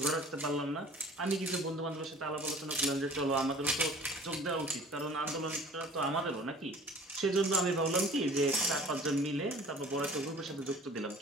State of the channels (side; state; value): both; normal; correlation 0.47